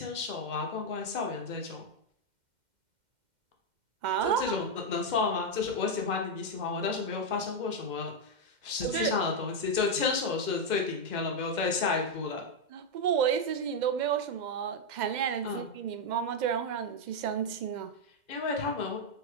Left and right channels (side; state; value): left; late; 2.1 ms